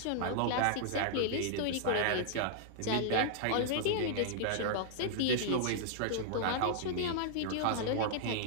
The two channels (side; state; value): both; different; correlation -0.01